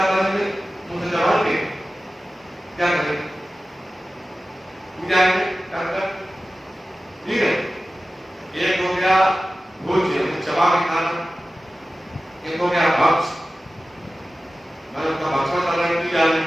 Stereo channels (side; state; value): both; normal; correlation 0.95